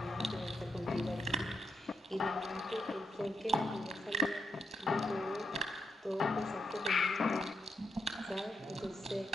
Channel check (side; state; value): both; normal; correlation 0.81